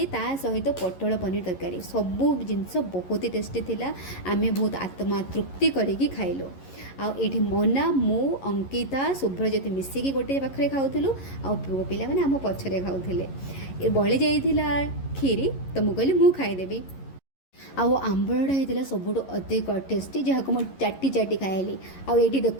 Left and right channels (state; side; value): late; right; 11 ms